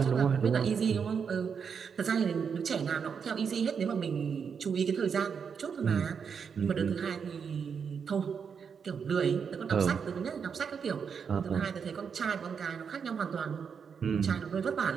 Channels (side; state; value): left; quieter; 6.5 dB